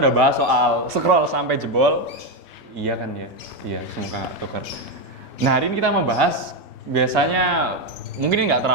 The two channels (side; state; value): both; normal; correlation 0.08